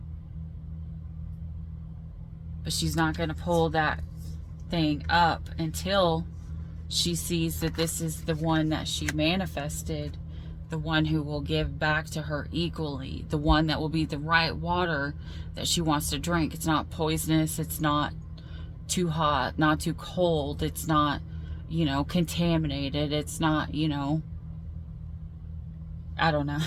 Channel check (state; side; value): identical; both; correlation 1.00